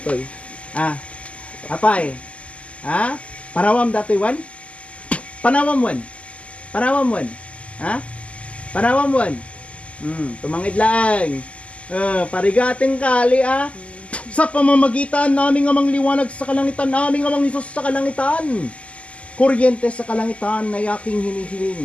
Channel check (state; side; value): late; right; 0.062 ms